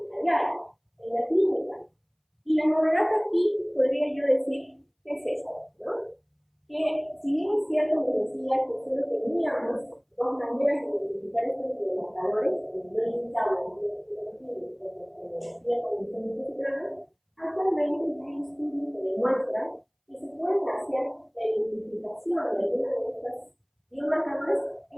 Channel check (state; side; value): identical; both; correlation 1.00